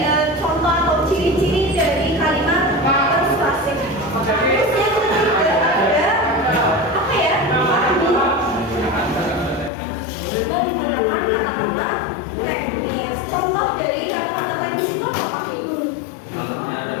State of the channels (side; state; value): right; drops out; at 9.7 s